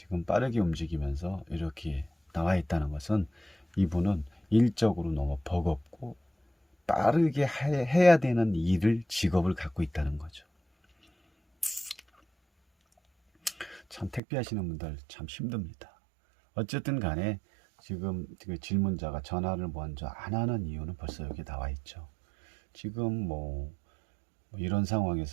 빠르게 움직이면서 이렇게 나와 있다는 것은 이분은 일적으로 너무 버겁고 빠르게 해야 되는 직업을 갖고 있다는 거죠. 참 택배 하시는 분들 참 힘듭니다. 어쨌든 간에 지금 그 질문자가 전화를 먼저 안 하는 이유는 벌써 여기 나와 있죠. 지금 뭐 이런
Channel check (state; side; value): drops out; left; at 14.2 s